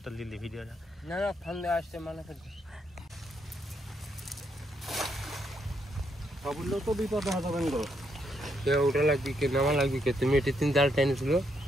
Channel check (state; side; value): normal; both; correlation 0.76